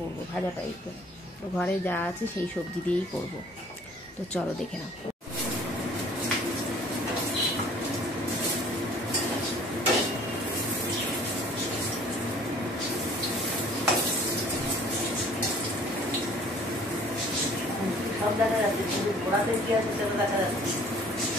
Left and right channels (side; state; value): both; normal; correlation 0.53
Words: ভাজা টাইপের। তো ঘরে যা আছে সেই সবজি দিয়েই করব। তো চলো দেখে নাও। সব দেখা যাচ্ছে, শুধু ঘোড়াতে কি আছে সেটা দেখা যাচ্ছে।